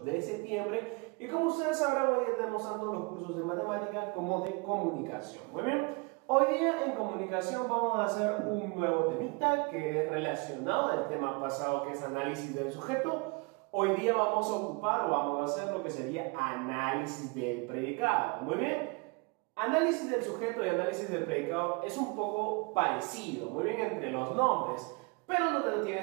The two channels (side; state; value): left; quieter; 29.8 dB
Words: septiembre y como ustedes sabrán, hoy día tenemos tanto los cursos de matemática como de comunicación. Muy bien. Hoy día en comunicación vamos a hacer un nuevo temita que es relacionado al tema pasado, que es análisis del sujeto. Hoy día vamos a ocupar o vamos a hacer lo que sería análisis del predicado. Muy bien. Análisis del sujeto y análisis del predicado es un poco parecido, muy bien, entre los nombres, pero no te